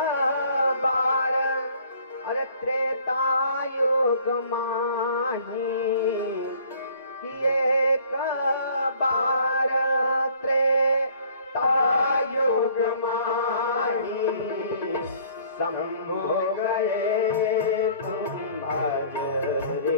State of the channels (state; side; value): inverted; both; correlation -0.55